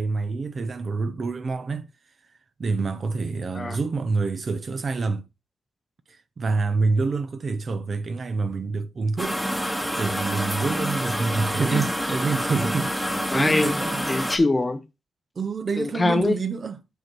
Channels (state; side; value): normal; both; correlation 0.91